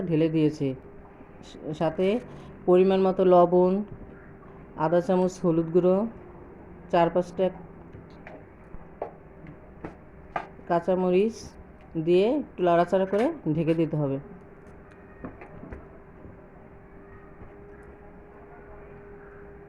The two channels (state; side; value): identical; both; correlation 1.00